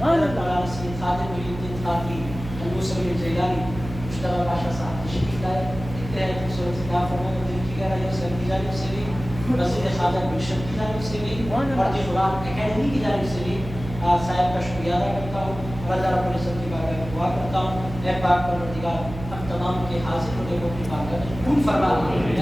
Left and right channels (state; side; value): noise; right; hum, 11 dB below the sound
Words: سید خادم محی الدین خانقی ابو سعید جیلانی مشتبہ پاشا صاحب تشریف لائے، انتہائی خوبصورت سے کہا فرمائے دل کی گہرائیوں سے اپنی جانب سے بھی، وزیر خارجہ گلشن کی جانب سے بھی اور قرآن اکیڈمی کی جانب سے بھی صاحب کا شکریہ ادا کرتا ہوں اور اللہ رب العزت کی بارگاہ میں دعا کرتا ہوں، اے پاک پروردگار ہم تمام کے حاضر ہونے کو اپنی بارگاہ میں قبول فرما،